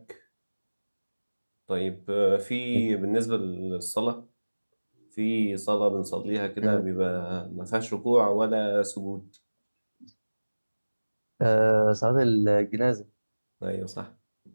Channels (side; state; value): both; inverted; correlation -1.00